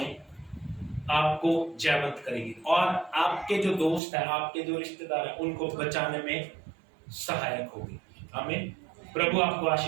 आपको जयवंत करेगी और आपके जो दोस्त हैं, आपके जो रिश्तेदार हैं, उनको बचाने में सहायक होगी। आमीन। प्रभु आपको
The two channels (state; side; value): drops out; left; at 4.0 s